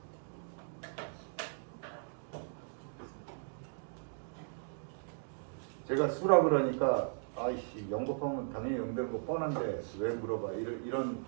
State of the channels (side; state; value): left; silent; digital silence